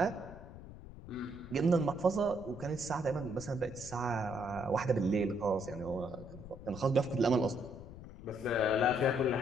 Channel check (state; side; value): noise; left; rumble, 14 dB below the sound